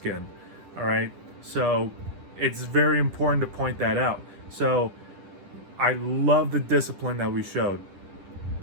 All right? So it's very important to point that out. So I love the discipline that we showed.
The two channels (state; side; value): late; left; 10 ms